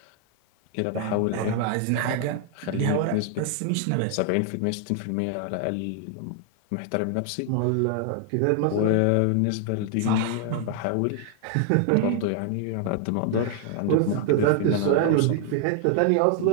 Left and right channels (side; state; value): both; different; correlation 0.00